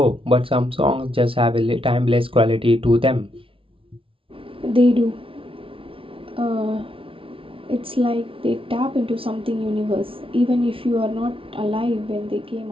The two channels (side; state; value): left; late; 0.26 ms